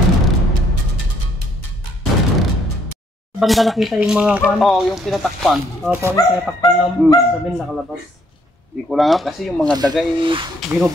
Banda nakita yung mga kuan? Oo, yung pinatakpan. Oo, yung pinatakpan ng sabihin nakalabas. Hindi ko lang kasi yung mga daga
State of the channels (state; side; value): normal; both; correlation 0.67